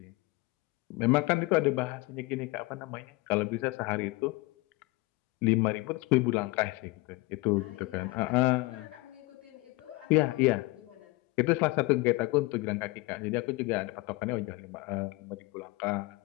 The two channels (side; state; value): right; quieter; 22.8 dB